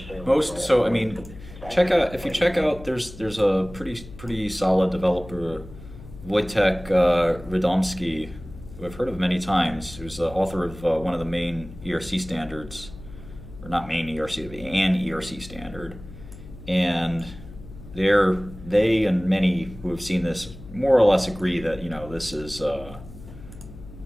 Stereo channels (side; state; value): left; noise; hum, 16 dB below the sound